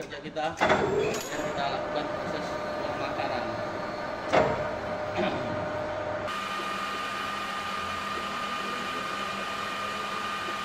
kita dan kita lakukan proses pemakaran.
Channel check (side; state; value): both; identical; correlation 1.00